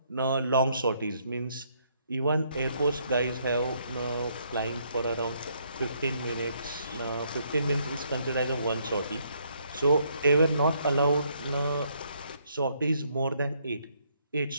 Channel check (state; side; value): inverted; both; correlation -0.70